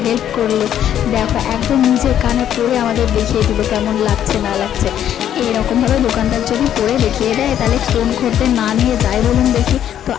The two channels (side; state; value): right; quieter; 10.4 dB